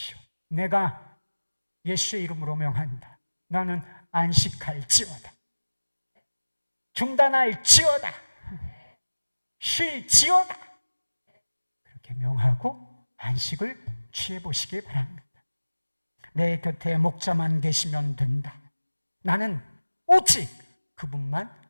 내가 예수의 이름으로 명한다. 나는 안식할지어다. 중단할지어다. 쉴지어다. 그렇게 명하고 안식을 취해보시기 바랍니다. 내 곁에 목자만 계시면 된다. 나는 오직 그분만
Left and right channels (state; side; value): inverted; both; correlation -1.00